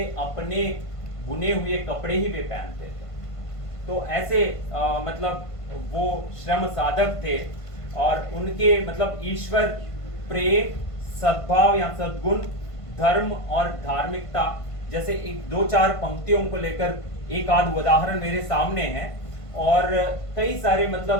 अपने बुने हुए कपड़े ही वे पहनते थे। तो ऐसे मतलब वो श्रम साधक थे, और उनके मतलब ईश्वर प्रेम, सद्भाव या सद्गुण, धर्म और धार्मिकता, जैसे एक 2-4 पंक्तियों को लेकर एक आध उदाहरण मेरे सामने है, और कई सारे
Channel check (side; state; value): right; late; 1.5 ms